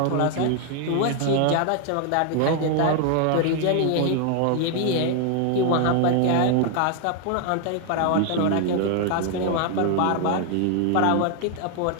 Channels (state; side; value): different; both; correlation 0.00